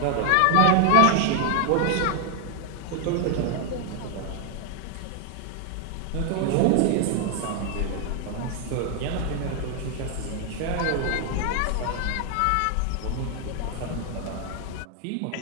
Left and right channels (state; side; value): different; both; correlation 0.00